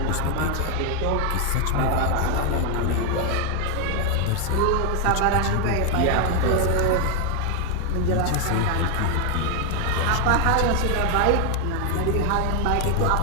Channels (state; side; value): different; both; correlation 0.01